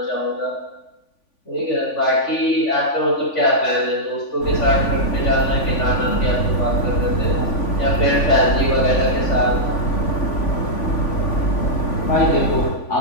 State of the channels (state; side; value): late; right; 3.5 ms